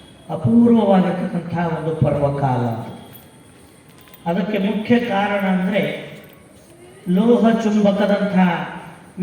ಅಪೂರ್ವವಾಗಿರ್ತಕ್ಕಂಥ ಒಂದು ಪರ್ವಕಾಲ. ಅದಕ್ಕೆ ಮುಖ್ಯ ಕಾರಣ ಅಂದರೆ ಲೋಹ ಚುಂಬಕದಂಥ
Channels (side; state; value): both; identical; correlation 1.00